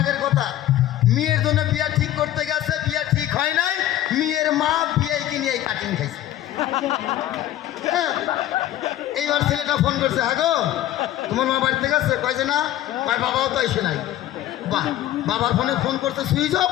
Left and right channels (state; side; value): quieter; right; 13.3 dB